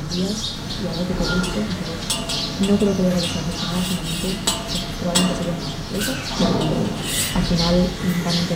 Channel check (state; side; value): identical; both; correlation 1.00